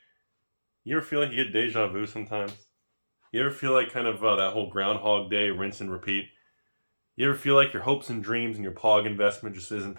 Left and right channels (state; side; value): inverted; both; correlation -1.00